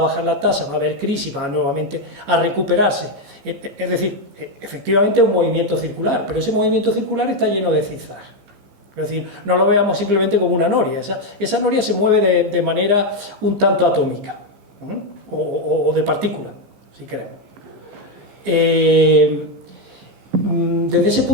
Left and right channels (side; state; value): left; late; 15 ms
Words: la tasa, va a haber crisis, va nuevamente a recuperarse. Es decir, efectivamente es un movimiento circular, pero ese movimiento circular está lleno de zigzag. Es decir, no lo veamos simplemente como una noria. Esa noria se mueve de manera un tanto atómica, o de partícula, si queremos. Desde ese